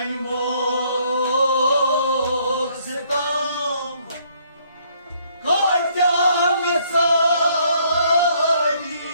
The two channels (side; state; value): both; inverted; correlation -0.66